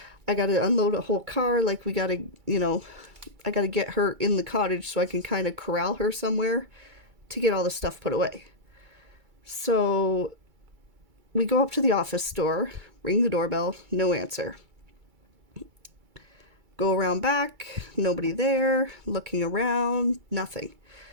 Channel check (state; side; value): late; left; 2.3 ms